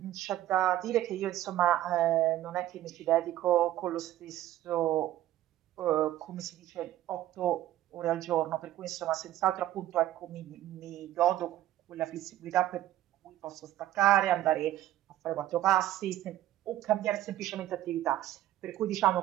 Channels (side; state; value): left; quieter; 13.7 dB